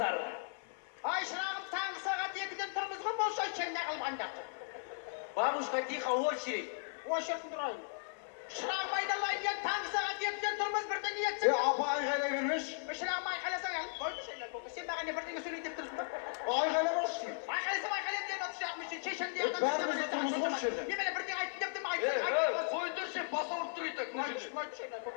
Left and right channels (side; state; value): right; silent; 53 dB below the other